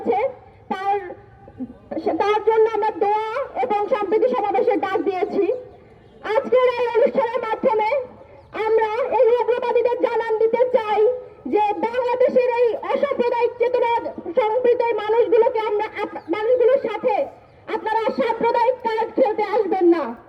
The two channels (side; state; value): both; identical; correlation 1.00